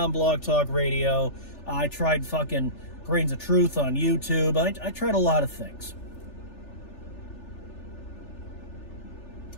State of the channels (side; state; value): right; late; 3.4 ms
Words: Blog Talk Radio. I tried fucking Grains of Truth on YouTube. I tried a lot of things.